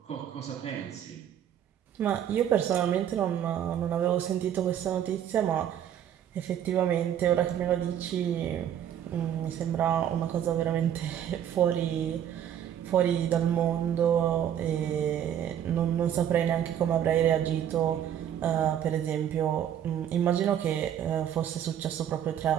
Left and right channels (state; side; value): quieter; left; 10.0 dB